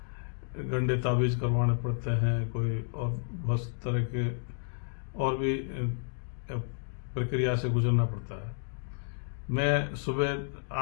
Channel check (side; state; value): right; silent; digital silence